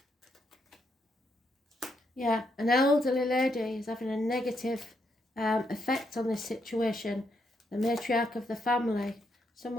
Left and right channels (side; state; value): both; normal; correlation 0.78